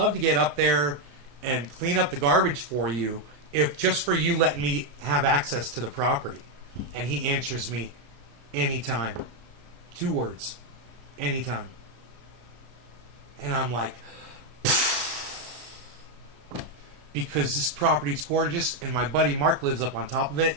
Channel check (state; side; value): late; left; 33 ms